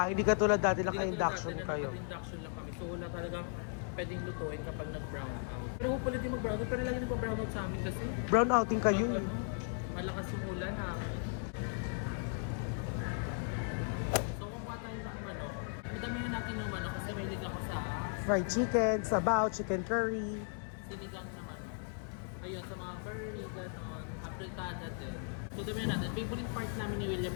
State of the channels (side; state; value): right; silent; 53 dB below the other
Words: hindi katulad dati Hindi naka-induction katulad dati na kayo. naka-induction lang kami. So wala talagang pwedeng lutuin kapag nag-brown out. Pero hopefully di mag-brown out. Pero lagi nag-brown out sa amin kasi. Brown outing kayo. Malakas yung ulan ha. So kumuha tayo ng manok. Madamihan natin yung manok kasi may lig ako sa Fried chicken, sabaw, chicken curry. sinigang na manok. Ayun, sa mga curry, gano'n. Apritada din. So damihan natin. Favorite part namin ni William